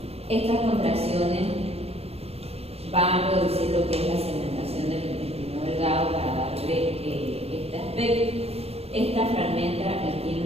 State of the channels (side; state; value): left; late; 0.29 ms